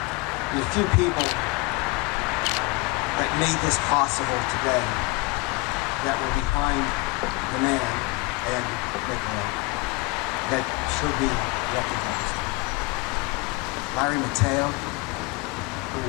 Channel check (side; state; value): right; quieter; 25.7 dB